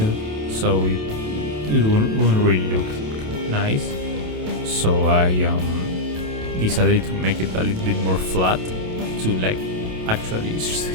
so it wouldn't really look nice. So I decided to make it a little bit more flat to like actually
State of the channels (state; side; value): late; left; 27 ms